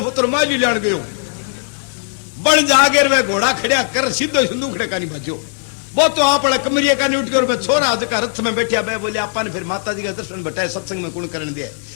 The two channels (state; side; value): silent; right; 58 dB below the other